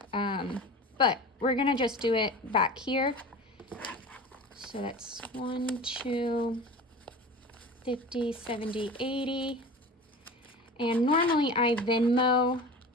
But we're gonna just do it back here. So that's 1, 2, 50, 70, 80. And normally I Venmo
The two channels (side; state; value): both; normal; correlation 0.34